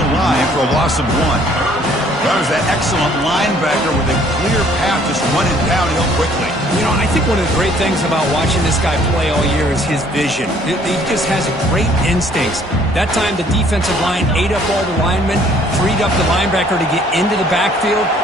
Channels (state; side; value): normal; both; correlation 0.60